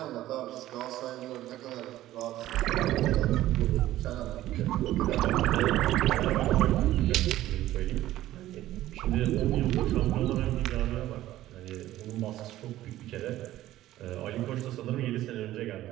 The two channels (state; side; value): quieter; left; 14.6 dB